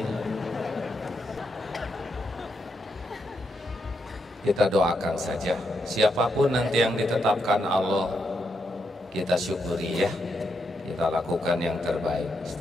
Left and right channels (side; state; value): both; normal; correlation 0.81